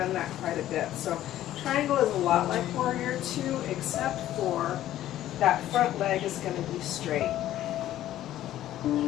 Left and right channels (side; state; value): right; quieter; 13.2 dB